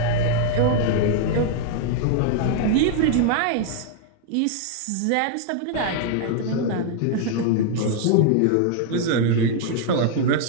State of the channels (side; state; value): both; different; correlation 0.00